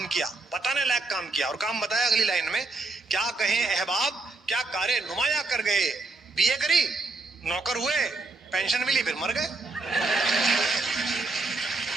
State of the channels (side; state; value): left; quieter; 3.5 dB